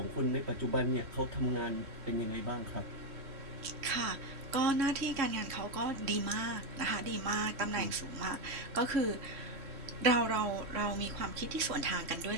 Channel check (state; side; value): late; left; 3.1 ms